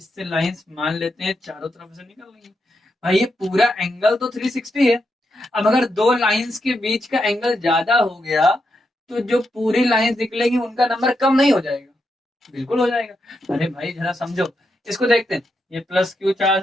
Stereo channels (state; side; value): normal; both; correlation 0.83